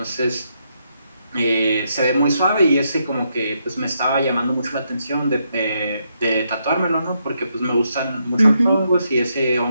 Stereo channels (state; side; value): inverted; both; correlation -0.79